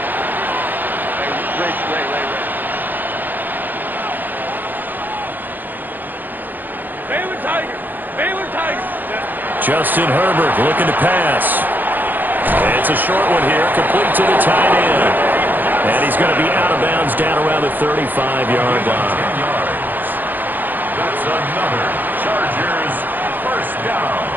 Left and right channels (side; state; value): left; late; 0.088 ms